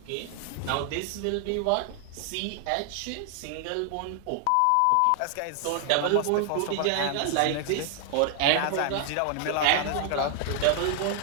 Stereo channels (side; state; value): both; different; correlation 0.00